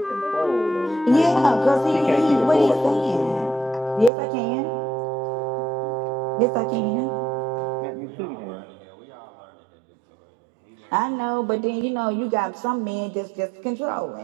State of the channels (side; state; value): left; drops out; at 4.1 s